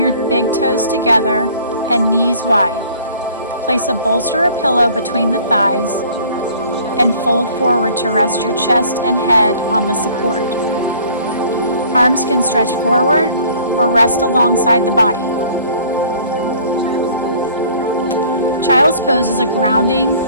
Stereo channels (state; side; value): inverted; both; correlation -0.53